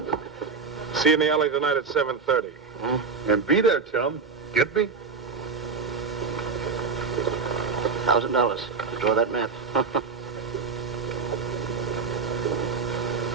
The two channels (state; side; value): quieter; left; 5.2 dB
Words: See you in the alley tonight at 7:30. And be there, chum. Get me? $1,000 to draw that map.